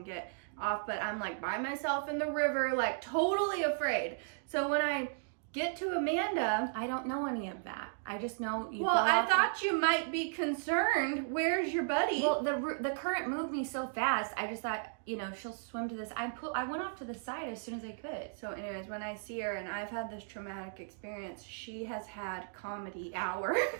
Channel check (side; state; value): left; silent; digital silence